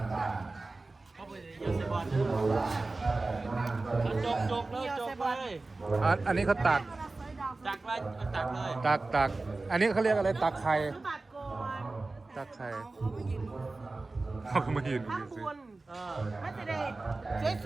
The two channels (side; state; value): left; quieter; 3.4 dB